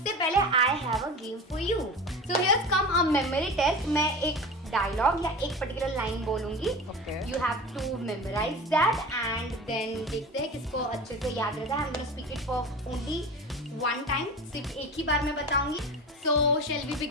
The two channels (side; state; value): both; normal; correlation 0.32